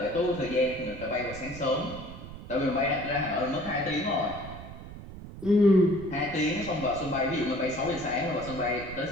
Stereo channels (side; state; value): right; noise; rumble, 13 dB below the sound